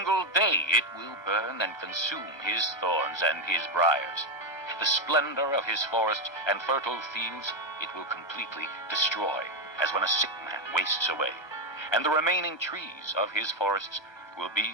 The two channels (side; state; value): right; late; 1.3 ms